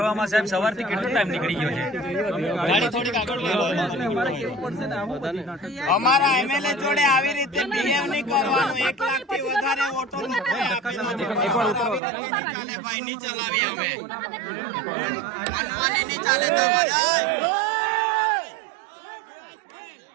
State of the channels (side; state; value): left; drops out; at 12.0 s